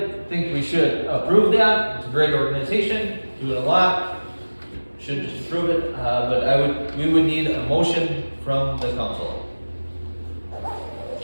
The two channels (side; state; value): both; inverted; correlation -1.00